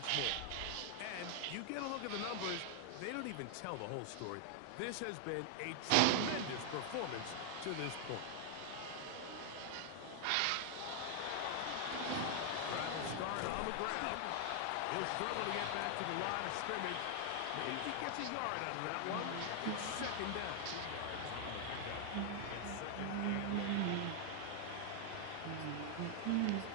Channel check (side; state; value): both; different; correlation 0.00